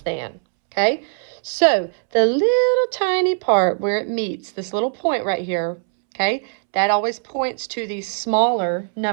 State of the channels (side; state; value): left; silent; 65 dB below the other